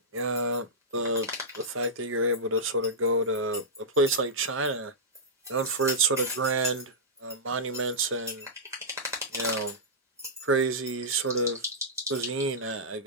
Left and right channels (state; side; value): normal; both; correlation -0.12